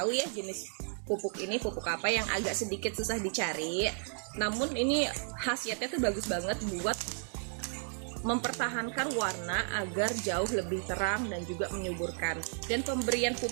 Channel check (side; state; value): left; silent; 56 dB below the other